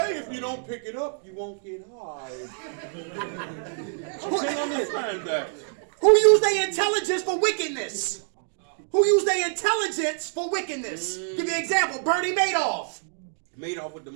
if you don't pick it up, you won't get high. I can't understand that. Who use their intelligence for wickedness? Who use their intelligence for wickedness? Give you an example. Bernie Madoff. Madoff with the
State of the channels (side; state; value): left; silent; digital silence